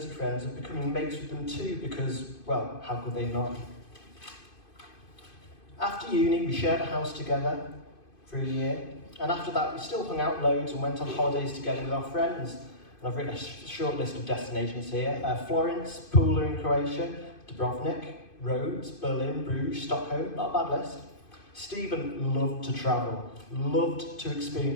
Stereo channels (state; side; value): late; right; 2.5 ms